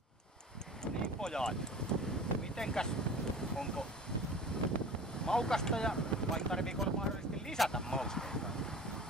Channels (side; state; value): both; normal; correlation 0.39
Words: Niin pojat, mitenkäs, onko maukasta ja vai tarviiko mahdollisesti lisätä mausteita?